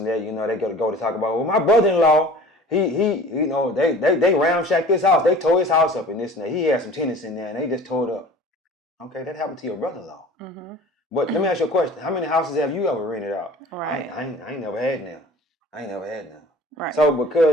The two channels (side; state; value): both; normal; correlation 0.44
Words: that. You know, they got to go to talk about, well, my brother-in-law, he you know, they ramshacked this house. They tore his house up and this and that. He had some tenants in there and they just tore it up. Okay, that happened to your brother-in-law. But let me ask you a question. How many houses have you ever rented out? Right. I ain't never had none. Right. So